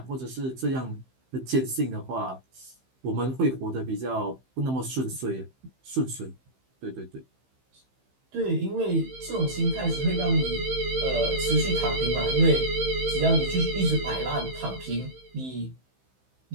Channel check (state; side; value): late; left; 15 ms